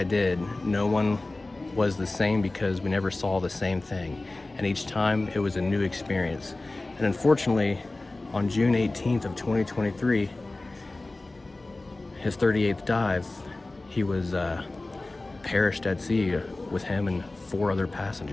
did, no one was the same because we never saw the same thing. And each time it was a new experience. And unfortunately, on June 18th of 2023, his 38th dive, he was perished at sea with him and 4 other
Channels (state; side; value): quieter; right; 3.0 dB